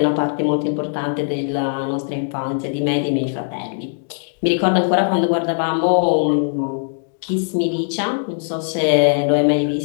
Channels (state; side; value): silent; right; digital silence